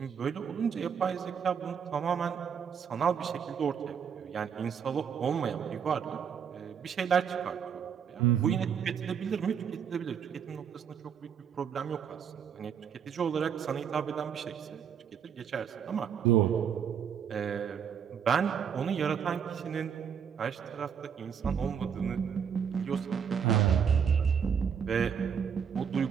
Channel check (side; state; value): left; quieter; 7.5 dB